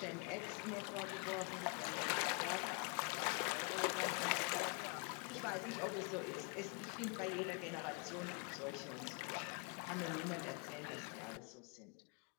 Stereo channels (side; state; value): right; quieter; 35.6 dB